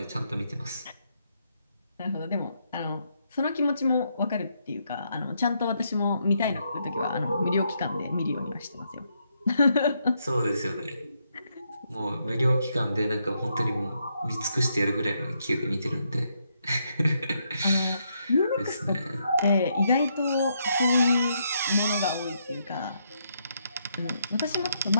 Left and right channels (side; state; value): both; inverted; correlation -0.77